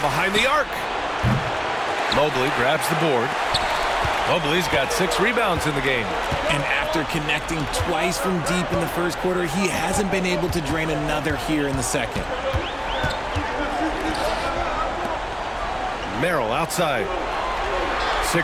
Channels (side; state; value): both; identical; correlation 1.00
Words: the arc. Mobley grabs the board. Mobley's got 6 rebounds in the game. And after connecting twice from deep in the first quarter, he hasn't been able to drain another here in the second. Merrill outside.